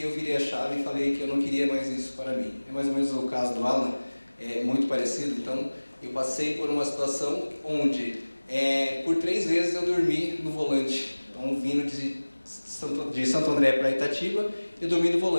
eu virei a chave e falei que eu não queria mais isso para mim. É mais ou menos o caso do Alan, é muito parecido. Então, eu passei por uma situação onde, por 3 vezes eu dormi no volante. Então, vindo de Santo André para Itatiba, eu dormi no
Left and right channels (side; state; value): both; inverted; correlation -1.00